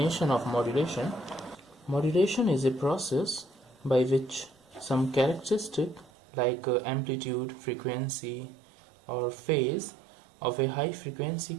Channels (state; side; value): drops out; left; at 6.1 s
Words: of modulation. Modulation is a process by which some characteristic like amplitude, frequency or phase of a high frequency